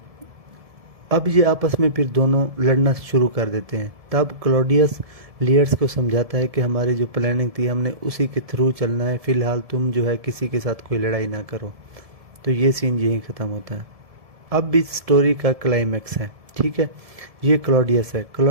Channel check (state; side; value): late; left; 1.7 ms